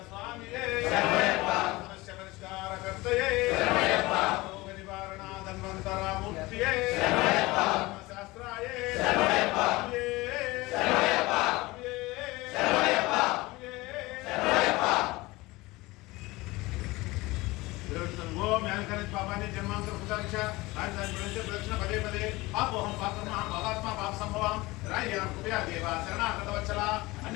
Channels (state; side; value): quieter; right; 21.2 dB